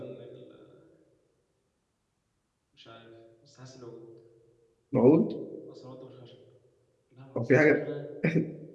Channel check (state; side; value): identical; both; correlation 1.00